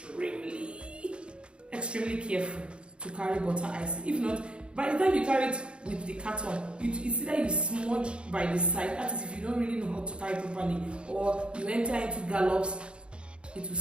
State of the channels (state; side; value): late; left; 0.056 ms